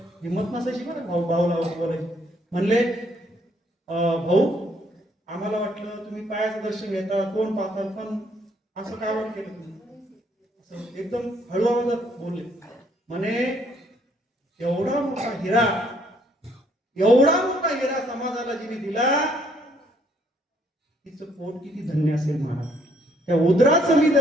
हिंमत नसायची बरं भाऊला बोलायची. म्हणले भाऊ आम्हाला वाटलं तुम्ही पायाचं दर्शन घेता, तोंड पाहता, पण असं काय वाट केलं तुम्ही? असं एकदम हळू आवाजात बोलले. म्हणे एवढा मोठा हिरा समाजाला जिने दिला, तिचं पोट किती धन्य असेल महाराज. त्या उदराचं मी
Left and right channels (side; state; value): both; normal; correlation 0.67